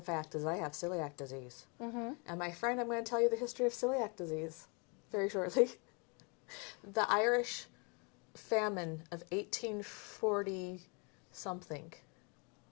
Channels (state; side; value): quieter; right; 33.3 dB